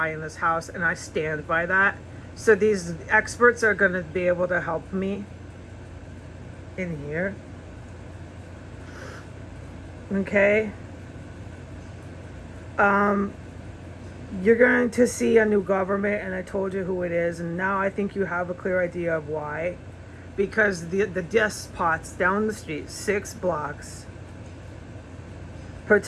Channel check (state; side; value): identical; both; correlation 1.00